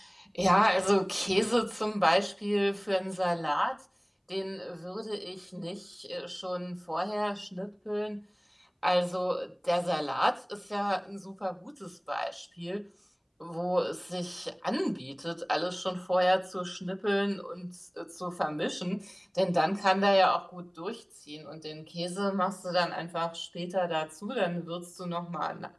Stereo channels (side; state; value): both; identical; correlation 1.00